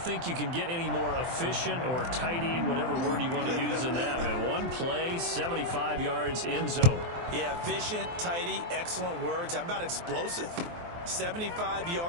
you can get any more efficient or tidy, whatever word you want to use in that. Man, one play, 75 yards, end zone. Yeah, efficient, tidy, excellent words. How about explosive? 75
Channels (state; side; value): late; left; 23 ms